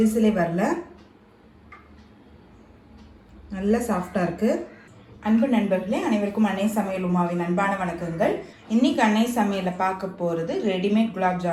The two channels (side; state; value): both; identical; correlation 1.00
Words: வரல, நல்ல சாஃப்டாக இருக்குது. அன்பு நண்பர்களே, அனைவருக்கும் அன்னை சமையல் உமாவின் அன்பான வணக்கங்கள். இன்றைக்கி அன்னை சமையலில் பார்க்க போகிறது ரெடிமேட் குலாப்